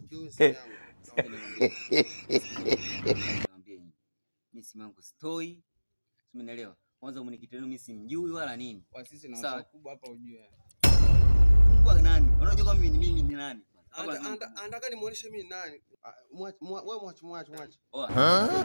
simu yangu. Niambie nyinyi. Mimi simu yangu stoi. Umeelewa? Kwanza mwenyekiti wenu mimi simjui wala nini. Kwa sisi na watu wakubwa hapa ujue. Kwa nani? Unajua kama mimi ni nani? Anataka nimuoneshe mimi nani. Wewe mwache.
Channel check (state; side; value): inverted; both; correlation -1.00